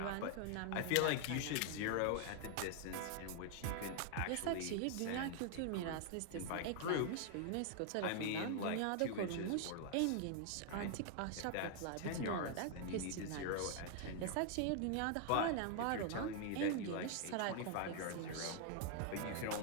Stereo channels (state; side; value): different; both; correlation 0.00